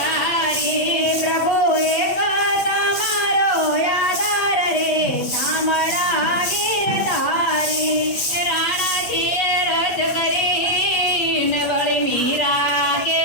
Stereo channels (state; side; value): late; right; 8.6 ms